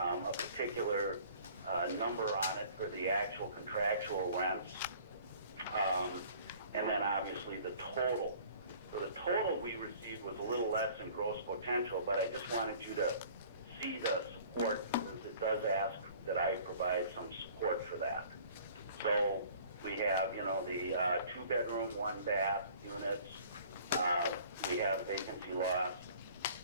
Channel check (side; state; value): both; inverted; correlation -0.51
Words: particular number on it for the actual contractual rents, and then obviously the total. So the total we received was a little less than gross potential, but I just wanted you to see the support because it does ask that I provide some support for that. So we have, you know, the 2-bedroom, 1-bath units. We have vacancy loss,